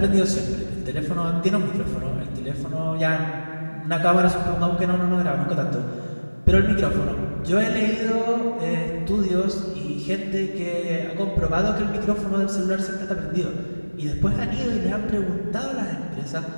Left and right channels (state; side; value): inverted; both; correlation -1.00